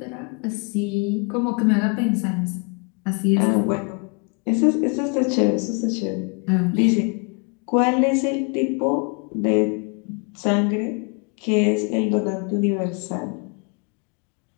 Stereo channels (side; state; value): right; quieter; 35.6 dB